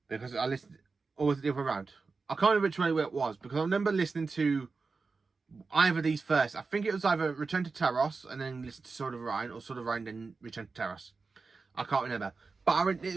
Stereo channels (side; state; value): left; quieter; 4.3 dB